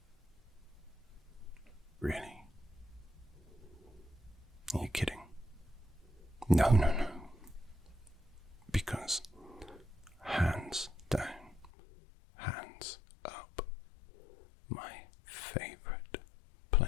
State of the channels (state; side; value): drops out; right; at 11.7 s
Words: Really? Are you kidding? No. Because hands down, hands up, my favorite